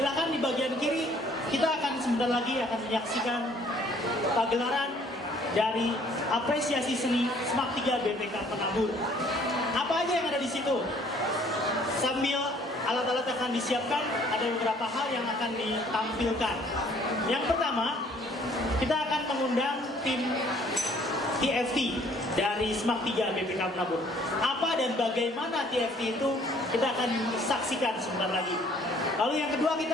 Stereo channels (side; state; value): both; normal; correlation 0.59